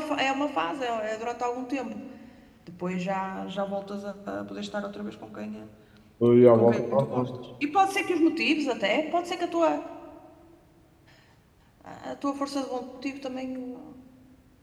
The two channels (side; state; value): both; identical; correlation 1.00